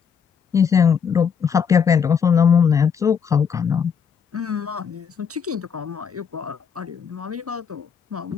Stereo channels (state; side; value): quieter; right; 6.9 dB